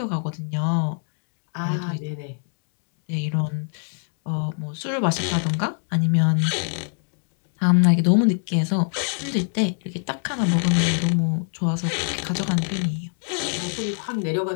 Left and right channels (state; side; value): silent; right; 56 dB below the other